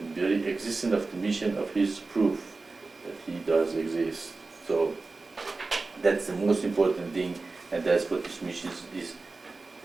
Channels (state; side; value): quieter; left; 3.7 dB